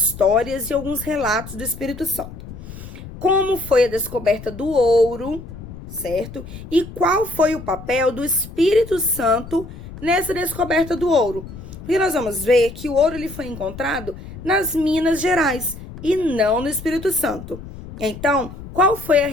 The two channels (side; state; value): left; noise; rumble, 13 dB below the sound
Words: e alguns relatos do Espírito Santo. Como foi a descoberta do ouro, certo? E qual foi o papel do Espírito Santo nessa descoberta do ouro? Porque nós vamos ver que o ouro ele foi encontrado nas Minas Gerais e não no Espírito Santo. Então, qual foi a